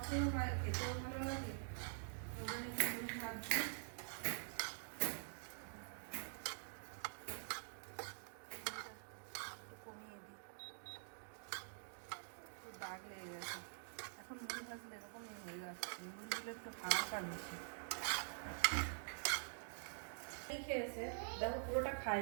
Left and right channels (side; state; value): left; silent; digital silence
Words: হয়, খেতেও ভালো লাগে। ওখানে মুড়ি ভাজছি। কমিয়ে দিই, একটু দাগ লেগে গেছে। এখন মুড়ি ভাজলে এরকমই হয়ে যাচ্ছে, মুড়িগুলো একটু হালকা বেশি খেয়েছে। দেখো পুরোটা